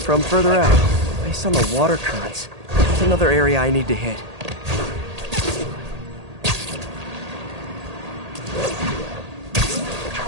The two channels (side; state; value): left; late; 1.8 ms